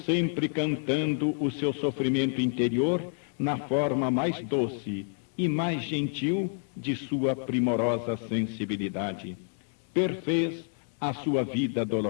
cantando o seu sofrimento interior na forma mais doce e mais gentil de sua primorosa sensibilidade. Perfez a sua vida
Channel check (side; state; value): right; silent; 59 dB below the other